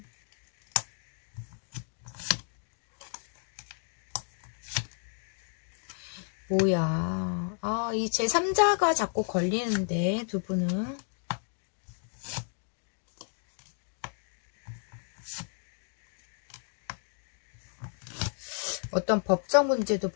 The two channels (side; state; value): right; silent; 56 dB below the other